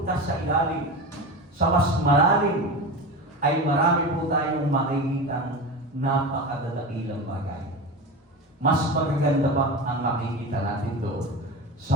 sa ilalim, sa mas malalim, ay marami po tayong makikitang napakadadakilang bagay. Mas magaganda pa ang makikita natin doon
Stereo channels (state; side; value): normal; both; correlation 0.26